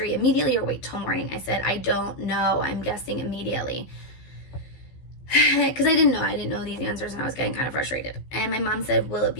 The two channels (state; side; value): late; right; 15 ms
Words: immediately or wait till morning? I said, I don't know. I'm guessing immediately. Because I didn't know these answers, and I was getting kind of frustrated. And my mom said, will it